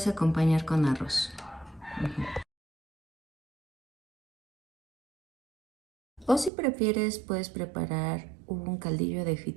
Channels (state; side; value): drops out; left; at 6.5 s